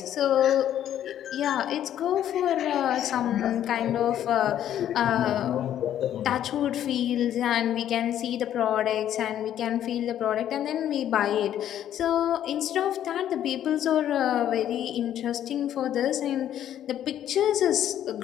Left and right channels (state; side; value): quieter; right; 11.0 dB